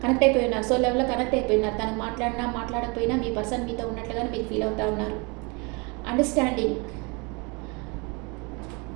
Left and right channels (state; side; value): quieter; left; 30.1 dB